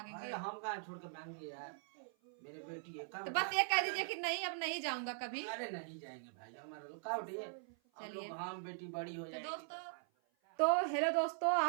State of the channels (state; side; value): silent; left; 50 dB below the other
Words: हम कहाँ छोड़ के भागेंगे यार, मेरे बेटी है। तो बस ये कह दीजिए कि नहीं अब नहीं जाऊंगा कभी। अरे नहीं जाएंगे भाई, हमारा लोग का उठिए। चलिए हम बेटी बड़ी हो तो दोस्तों, तो हेलो दोस्तों,